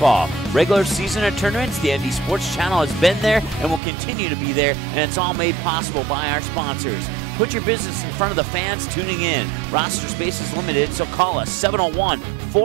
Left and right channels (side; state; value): left; drops out; at 3.8 s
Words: Regular season and tournaments, the ND Sports Channel has been there and will continue to be there, and it's all made possible by our sponsors. Put your business in front of the fans tuning in. Roster space is limited, so call us